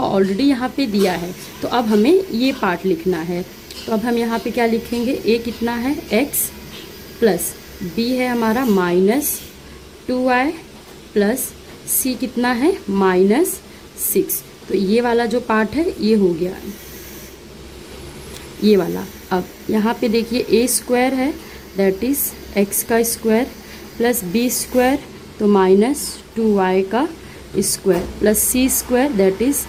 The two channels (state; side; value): identical; both; correlation 1.00